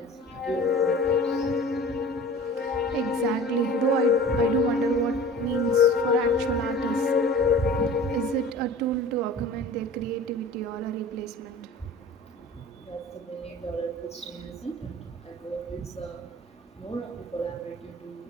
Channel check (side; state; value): both; normal; correlation 0.42